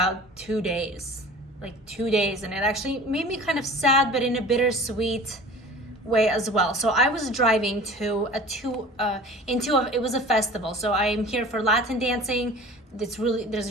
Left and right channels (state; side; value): normal; both; correlation 0.42